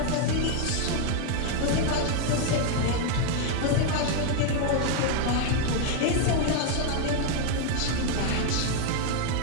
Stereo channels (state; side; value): different; both; correlation 0.01